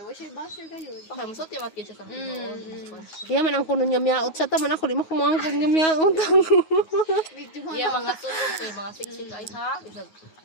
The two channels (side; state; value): right; late; 9.5 ms